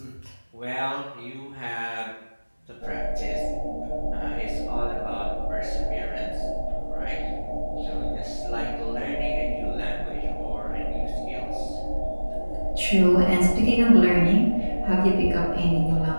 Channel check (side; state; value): both; inverted; correlation -1.00